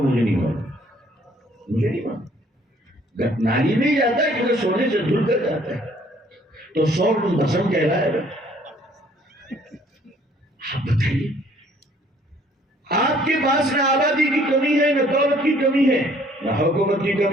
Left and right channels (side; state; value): both; normal; correlation 0.60